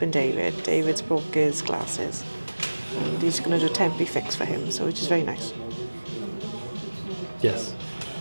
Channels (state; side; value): inverted; both; correlation -1.00